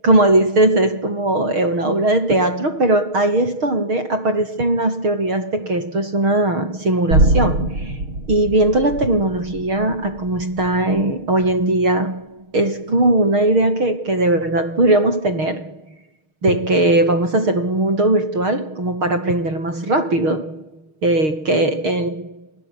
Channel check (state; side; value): late; left; 6.4 ms